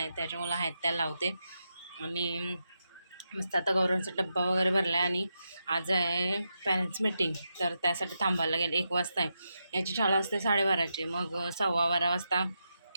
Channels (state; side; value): inverted; both; correlation -0.86